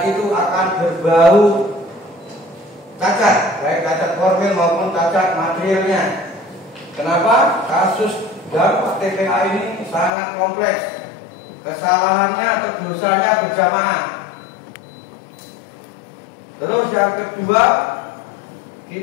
itu akan berbau cacat, baik cacat formil maupun cacat materialnya. Kenapa? Kasus dampak TPA ini sangat kompleks. Kesalahannya atau dosanya berjamaah. Terus yang kedua,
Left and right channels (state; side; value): drops out; right; at 10.1 s